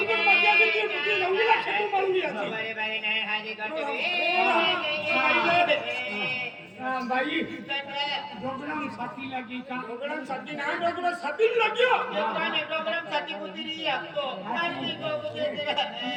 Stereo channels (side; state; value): both; identical; correlation 1.00